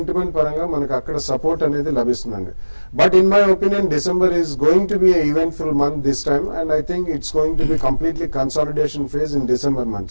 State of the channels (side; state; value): both; inverted; correlation -1.00